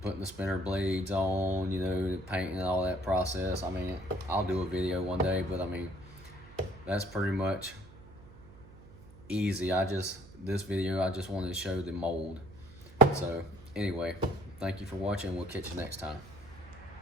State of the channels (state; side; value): noise; right; hum, 20 dB below the sound